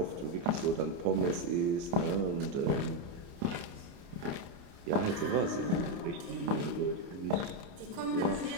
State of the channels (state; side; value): late; left; 29 ms